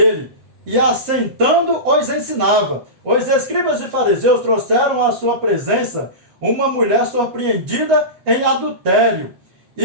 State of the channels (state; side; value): late; left; 7.7 ms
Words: e assentando os ensinava. Os escribas e fariseus trouxeram à sua presença uma mulher surpreendida em adultério,